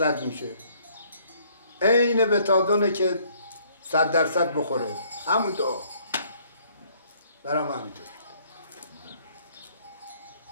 میشه. عین بتادونه که 100% بخوره. همون دعا برام همینطور.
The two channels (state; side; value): inverted; both; correlation -0.63